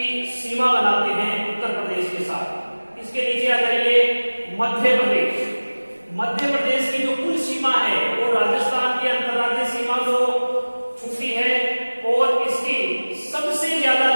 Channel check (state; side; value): inverted; both; correlation -1.00